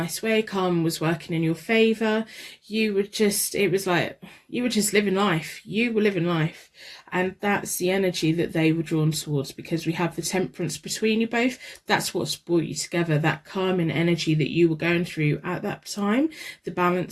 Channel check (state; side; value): identical; both; correlation 1.00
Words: way. Karma was working in your favour. You were just living life. You were living life. And that's the energy that they were drawn towards, because we have the Temperance between you both. That's what's brought you together, that calming energy that you were going through at that time, the